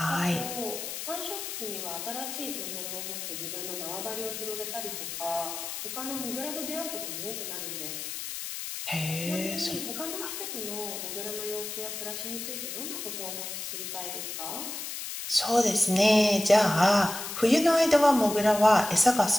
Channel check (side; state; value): left; noise; hiss, 6 dB below the sound